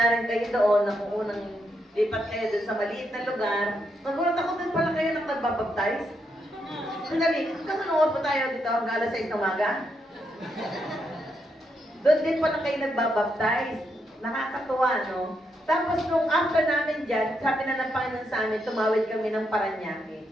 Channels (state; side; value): normal; both; correlation 0.80